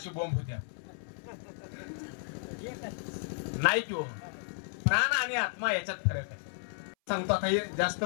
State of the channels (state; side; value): silent; right; 56 dB below the other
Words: बोंब होत्या नाही किंवा प्राण आणि आत्मा याच्यात फरक आहे. सांगतो आता हे जास्त